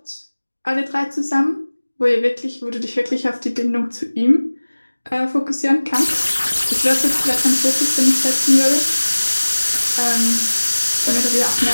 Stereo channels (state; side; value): inverted; both; correlation -1.00